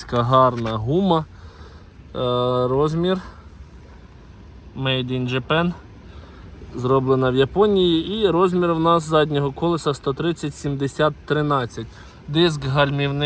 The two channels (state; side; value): identical; both; correlation 1.00